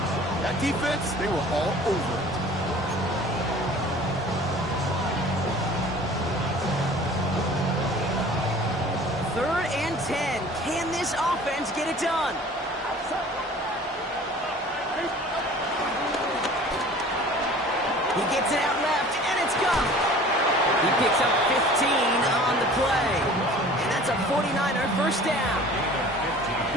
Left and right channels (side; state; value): both; normal; correlation 0.46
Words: That defense, they were all over it. Third and 10. Can this offense get it done? He gets it out left, and it's gone. He picks up 15 on the play. And that's a 49er 1st down.